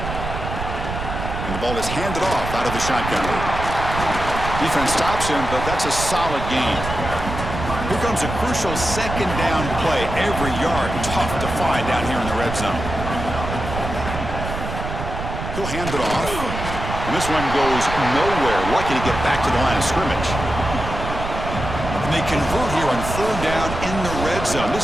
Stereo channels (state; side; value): noise; right; rumble, 6 dB below the sound